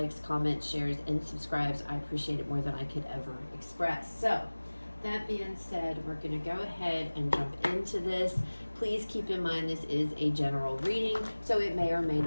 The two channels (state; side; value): inverted; both; correlation -1.00